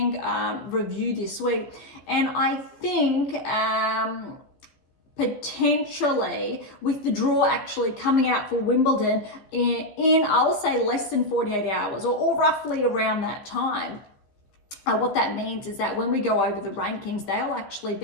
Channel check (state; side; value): late; right; 14 ms